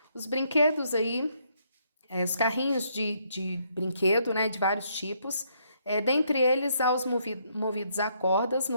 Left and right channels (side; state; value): both; inverted; correlation -0.73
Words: Os brinquedos aí, os carrinhos de brinquedo, né, de vários tipos, dentre eles há os movidos a cordas,